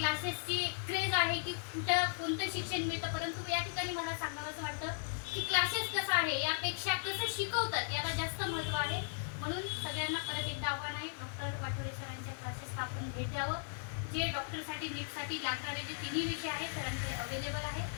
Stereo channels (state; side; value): silent; right; 53 dB below the other